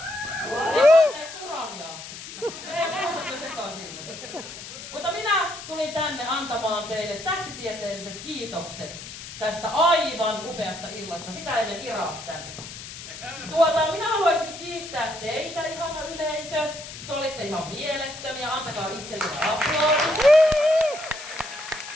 Ei Urania. Ei muusat jo sekaisin. Mutta minä tulin tänne antamaan teille tähtitieteelliset kiitokset tästä aivan upeasta illasta. Sitä ennen Ira tänne. Minä haluaisin kiittää teitä, ihana yleisö. Te olitte ihan mielettömiä. Antakaa itsellenne aplodit.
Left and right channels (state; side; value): noise; left; hiss, 12 dB below the sound